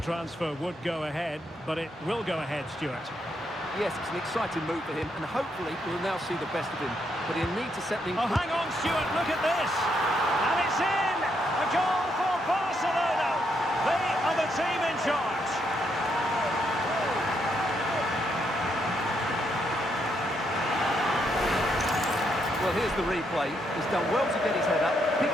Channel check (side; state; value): both; normal; correlation 0.77